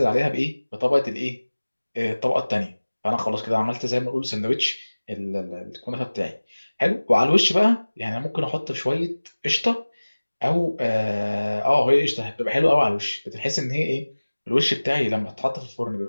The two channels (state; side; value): inverted; both; correlation -1.00